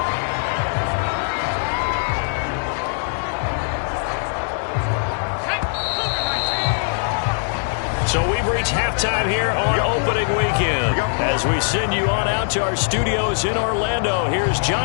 So we've reached halftime here on opening weekend. As we send you on out to our studios in Orlando, here's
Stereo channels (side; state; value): right; silent; digital silence